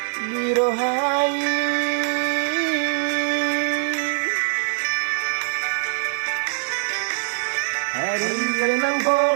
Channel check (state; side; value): silent; left; digital silence